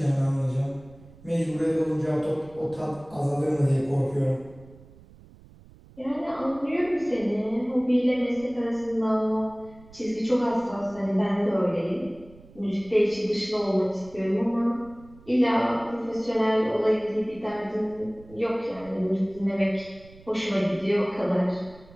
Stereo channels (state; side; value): noise; right; rumble, 22 dB below the sound